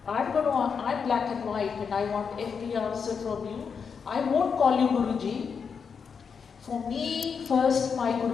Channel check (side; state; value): right; quieter; 6.1 dB